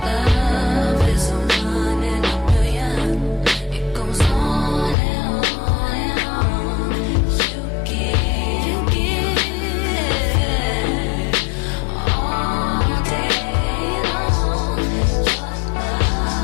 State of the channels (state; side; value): drops out; right; at 5.0 s